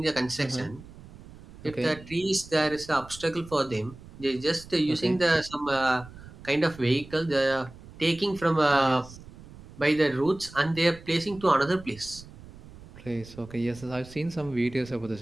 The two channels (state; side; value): noise; right; rumble, 18 dB below the sound